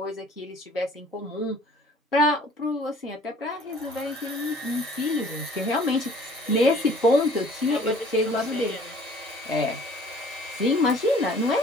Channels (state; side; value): normal; both; correlation 0.53